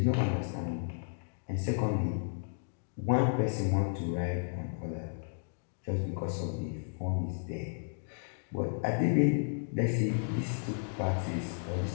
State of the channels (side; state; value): right; silent; digital silence